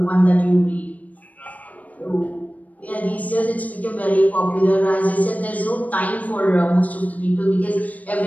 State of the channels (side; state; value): right; late; 0.073 ms